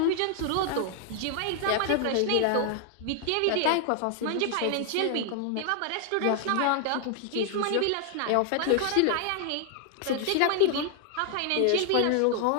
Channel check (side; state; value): both; different; correlation 0.00